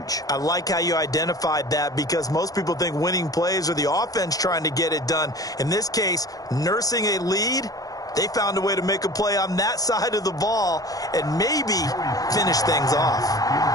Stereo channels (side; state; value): right; late; 0.18 ms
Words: I like how you identified that because most people think winning plays are the offense trying to get it done. In this case, nursing a lead, they found a way to make a play on that side of the ball and maybe finish things off.